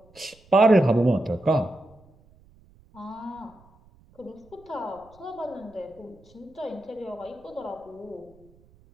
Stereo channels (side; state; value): right; noise; rumble, 28 dB below the sound